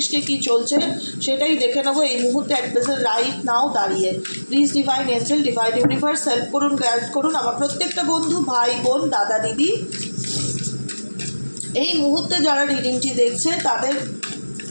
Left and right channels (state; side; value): inverted; both; correlation -1.00